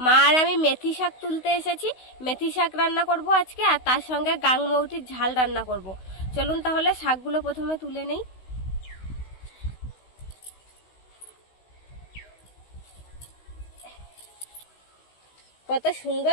মা আর আমি মেথি শাক তুলতে এসেছি। মেথি শাক রান্না করব আজকে, আর তার সঙ্গে গাংমৌটির ঝাল রান্না করব। চলুন তাহলে শাকগুলো প্রথমে তুলে নেই। কত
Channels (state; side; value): late; right; 16 ms